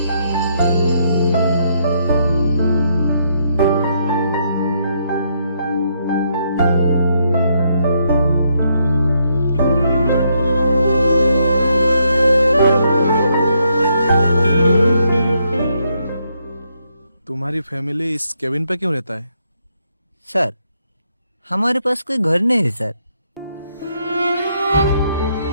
तुम्हारी फैमिली इस केबिन पे क्यों रहता है? सर हमारे पास कोई घर नहीं है सर।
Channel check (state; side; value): inverted; both; correlation -0.75